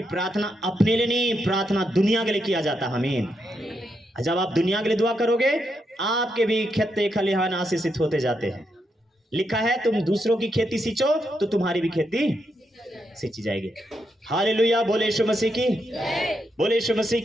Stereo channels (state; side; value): normal; both; correlation 0.82